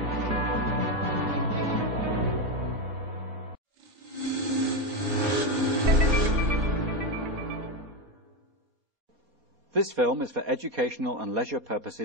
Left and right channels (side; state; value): left; late; 4.2 ms